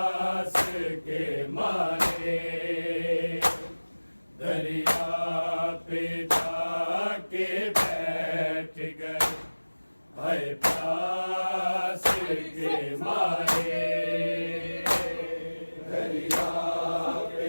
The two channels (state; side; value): inverted; both; correlation -1.00